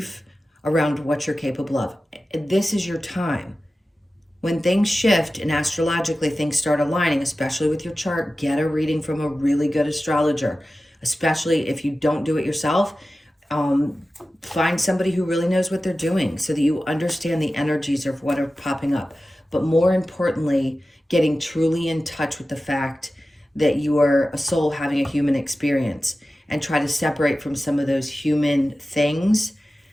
around what you're capable of. This is your time. When things shift and astrologically things start aligning, especially with your chart, get a reading from a really good astrologer, especially if you don't do it yourself. Find somebody who really knows what they're doing so that you understand the energies of what are popping up. But more importantly, getting truly in touch with the fact that you are a soul having a human experience, and try to separate from some of those human things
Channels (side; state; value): both; normal; correlation 0.95